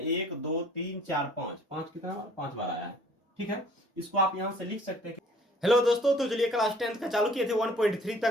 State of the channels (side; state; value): both; normal; correlation 0.55